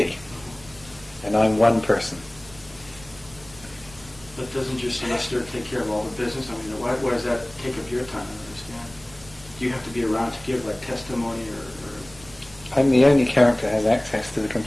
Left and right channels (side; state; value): right; noise; rumble, 22 dB below the sound